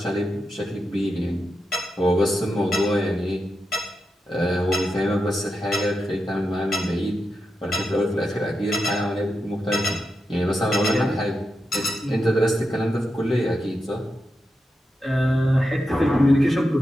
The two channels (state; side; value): normal; both; correlation 0.88